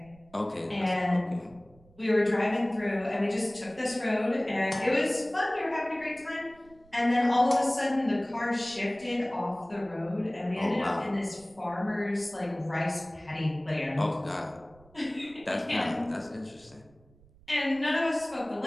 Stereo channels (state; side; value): noise; right; rumble, 27 dB below the sound